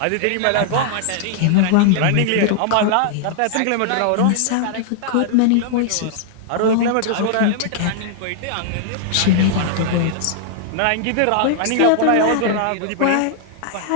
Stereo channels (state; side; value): different; both; correlation -0.01